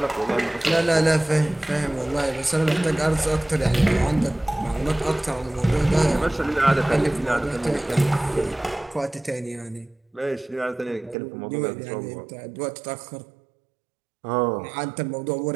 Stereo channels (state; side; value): drops out; left; at 11.2 s